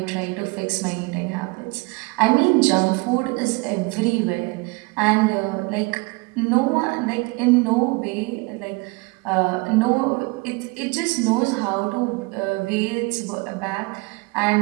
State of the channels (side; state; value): left; quieter; 26.8 dB